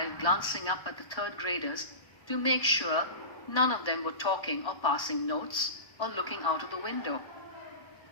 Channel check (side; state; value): right; late; 1.3 ms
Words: glancing up at the third graders to make sure none of them were talking or passing notes or looking out of the window.